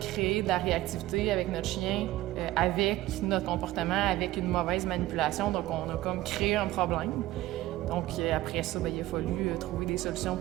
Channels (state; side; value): quieter; left; 16.2 dB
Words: de la réactivité avec notre chien, avec notre comportement, avec une mauvaise manipulation. Donc, on a comme créé un problème. Donc, après ça, ben, il a fallu trouver des solutions